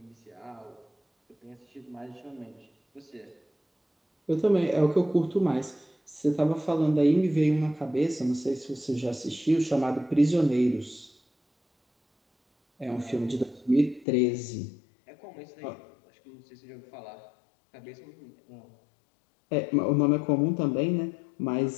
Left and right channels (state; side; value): drops out; right; at 14.1 s